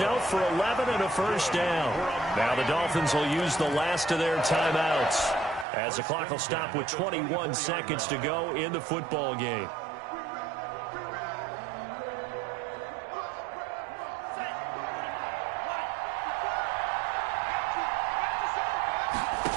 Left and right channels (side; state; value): left; drops out; at 5.7 s